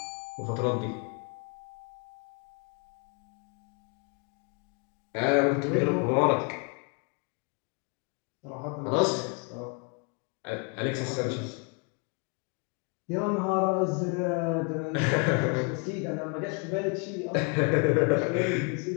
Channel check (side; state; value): right; quieter; 34.4 dB